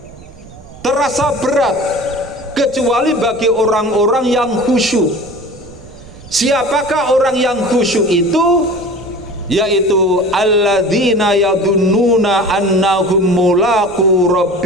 terasa berat, kecuali bagi orang-orang yang khusyuk. Siapakah orang yang khusyuk itu? Yaitu alladzina yadunnuna annahum mulaqu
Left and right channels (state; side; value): noise; right; rumble, 20 dB below the sound